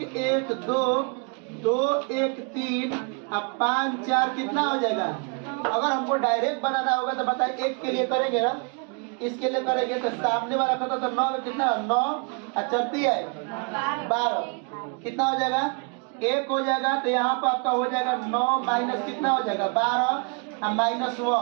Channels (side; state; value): left; quieter; 35.8 dB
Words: 1 2 2 1 3 अब 5 4 कितना हो जाएगा। अगर हमको डायरेक्ट बनाना होगा तो बताइए, एक के लिए करेंगे ना, इसके लिए करेंगे तो सामने वाला खाता तो 9 में कितना 9 चलती है 12 कितना हो जाएगा 1 हो जाएगा। तो यहाँ पर आपका हो जाएगा 9 माइनस कितना हो जाएगा 12 और